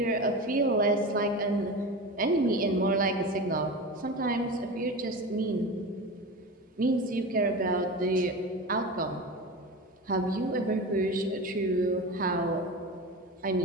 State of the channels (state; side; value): normal; both; correlation 0.27